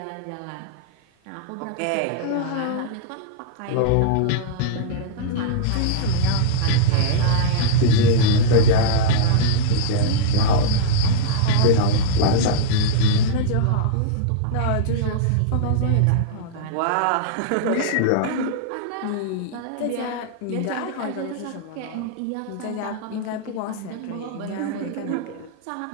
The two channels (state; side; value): different; both; correlation -0.02